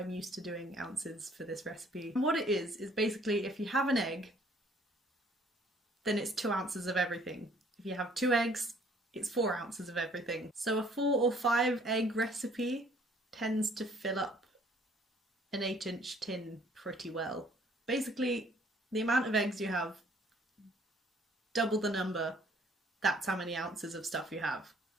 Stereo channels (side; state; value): both; normal; correlation 0.60